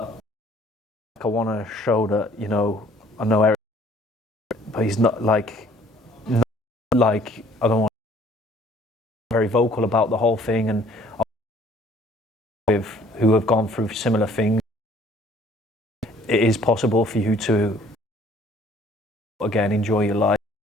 I want to show that, you know, I know Eric, but he's not like I don't want to be very vocal about the whole thing, and with who have gone through similar things, it is possible for you to again enjoy your life.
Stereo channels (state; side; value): normal; both; correlation 0.57